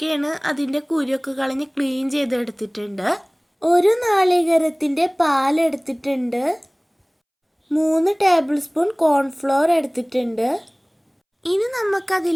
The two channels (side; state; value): both; identical; correlation 1.00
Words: അതിൻ്റെ കുരുവൊക്കെ കളഞ്ഞ് ക്ലീൻ ചെയ്ത് എടുത്തിട്ടുണ്ട്. ഒരു നാളികേരത്തിൻ്റെ പാൽ എടുത്തിട്ടുണ്ട്. 3 ടേബിൾ സ്പൂൺ കോൺഫ്ലോർ എടുത്തിട്ടുണ്ട്. ഇനി